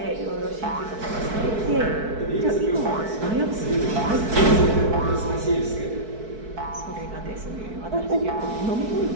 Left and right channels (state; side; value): late; left; 4.6 ms